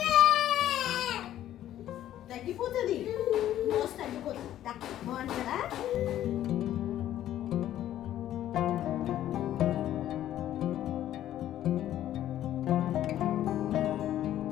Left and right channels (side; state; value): right; quieter; 12.3 dB